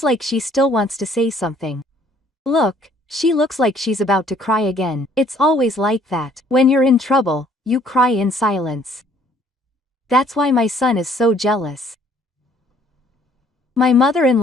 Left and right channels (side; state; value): both; normal; correlation 0.61